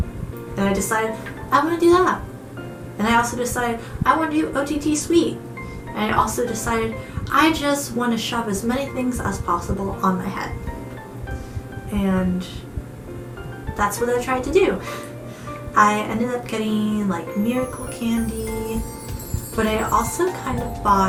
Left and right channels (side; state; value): both; identical; correlation 1.00